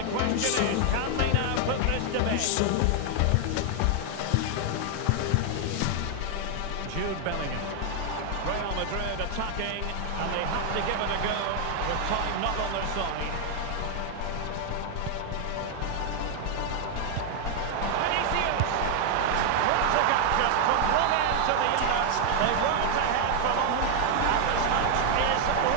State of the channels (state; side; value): different; both; correlation 0.00